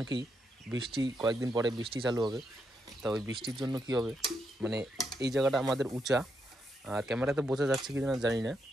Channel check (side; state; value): both; normal; correlation 0.81